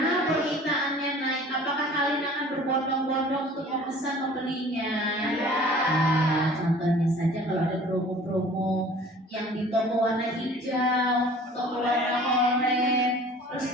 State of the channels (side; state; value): both; normal; correlation 0.47